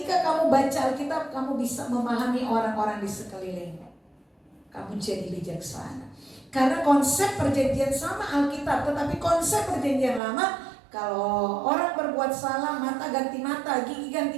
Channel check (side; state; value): left; drops out; at 10.2 s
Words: kamu baca Alkitab, kamu bisa memahami orang-orang di sekelilingmu. Kamu jadi bijaksana. Karena konsep perjanjian sama Alkitab, tetapi konsep perjanjian lama, kalau orang berbuat salah, mata ganti mata, gigi